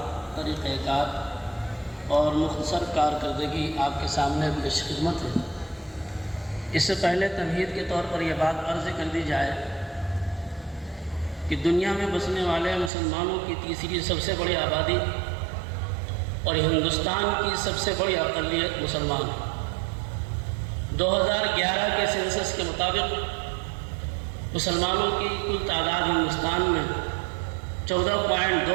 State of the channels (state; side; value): drops out; left; at 12.9 s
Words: طریقہ کار اور مختصر کارکردگی آپ کے سامنے پیش خدمت ہے۔ اس سے پہلے تمہید کے طور پر یہ بات عرض کر دی جائے کہ دنیا میں بسنے والے مسلمانوں کی تیسری سب سے بڑی آبادی اور ہندوستان کی سب سے بڑی اقلیت مسلمان ہے۔ 2011 کے سینسس کے مطابق مسلمانوں کی کل تعداد ہندوستان میں